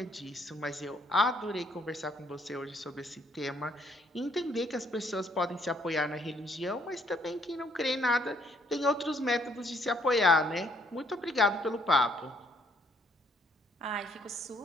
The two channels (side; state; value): both; normal; correlation 0.67